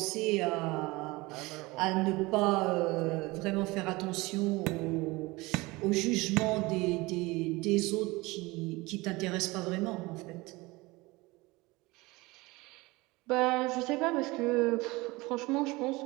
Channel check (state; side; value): quieter; left; 22.3 dB